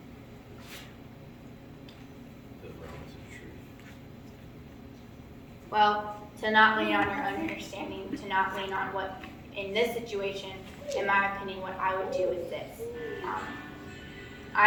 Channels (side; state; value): both; identical; correlation 1.00